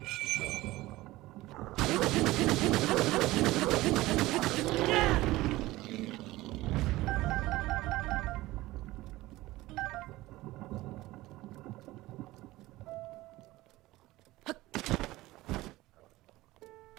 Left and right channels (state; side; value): quieter; left; 18.2 dB